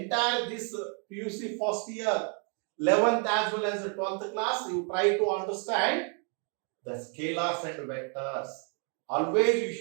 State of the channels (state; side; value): quieter; left; 39.9 dB